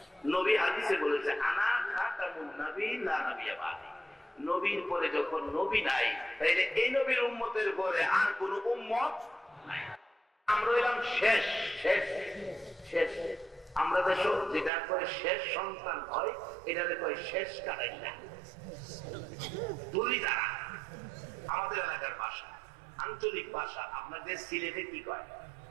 নবী হাদিসে বলেছে আনা খাতামুন নাবিয়্যিন লা নাবিয়্যা বাদি। নবীর পরে যখন নবী নাই, তাইলে এই নবীর উম্মতের পরে আর কোন উম্মত নাই। আমরা হইলাম শেষ শেষ শেষ। আমরা দেশ যেটা করে শেষ সন্তান হয়, এটাতে কয় শেষ কাটাইলা দুলি দ্বারা। আমাদের এলাকার ভাষা, আঞ্চলিক ভাষা। আপনাদের সিলেটে কি কয়?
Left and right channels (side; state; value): left; drops out; at 14.7 s